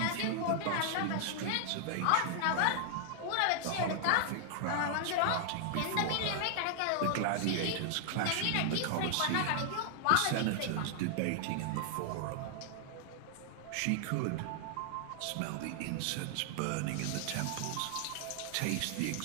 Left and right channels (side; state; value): both; different; correlation 0.00